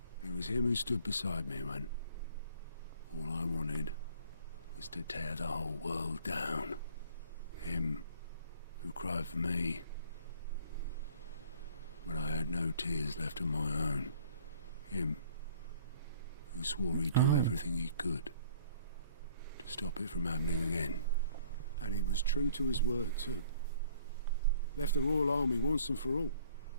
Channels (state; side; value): inverted; both; correlation -0.56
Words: It was him who stood beside me when all I wanted was to tear the whole world down. Him who cried for me when I had no tears left of my own. Him who swore he'd do everything he could to stop it from happening again. And he was true to his word too. Left the Royal Army once and for all.